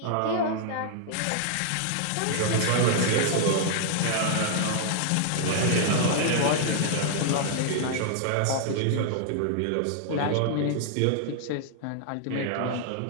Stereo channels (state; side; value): different; both; correlation -0.01